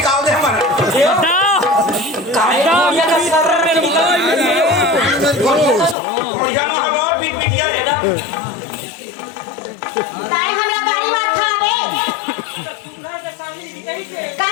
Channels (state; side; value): drops out; right; at 6.0 s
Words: दे हमारा काय ये का सर में निकल बढ़िया ना है वो पीट पिटिया है ना ताई हमरा गाड़ी मार खावे का